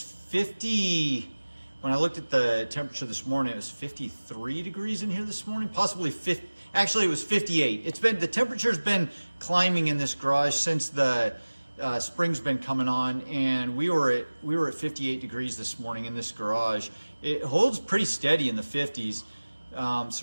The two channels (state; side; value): inverted; both; correlation -1.00